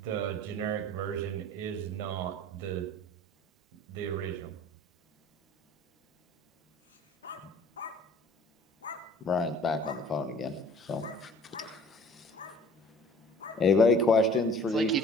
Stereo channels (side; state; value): both; normal; correlation 0.50